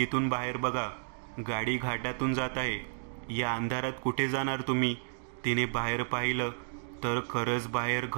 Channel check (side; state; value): left; silent; digital silence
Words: बाहेर बघा, गाडी घाटातून जात आहे. या अंधारात कुठे जाणार तुम्ही? तिने बाहेर पाहिलं तर खरंच बाहेर